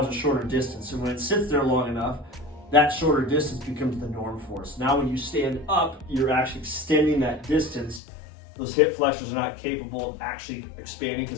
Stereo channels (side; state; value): right; drops out; at 8.0 s